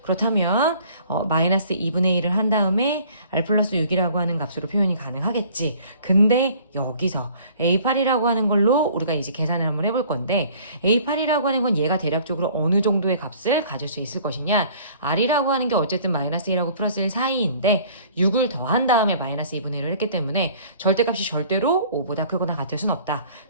그렇다면 마이너스 2분의 1을 한 다음에 R 플러스 6이라고 하는 값으로 표현이 가능하겠지. 근데 여기서 A8이라고 하는 걸로 우리가 이제 계산을 한번 해볼 건데 A8이라고 하는 건 얘가 대략적으로 어느 정도의 값을 가질 수 있을 것이냐. R이라고 하는 게 어쨌든 마이너스 1하고 플러스 1 사이인데 6을 더한 다음에 마이너스 2분의 1을 했기 때문에 절대값이 절대로 5보다 크거나 같을 순 없다.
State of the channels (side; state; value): both; inverted; correlation -0.53